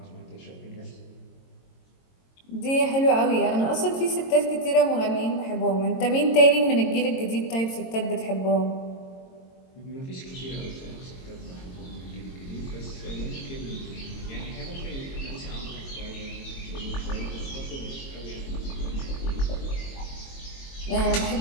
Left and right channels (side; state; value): right; late; 22 ms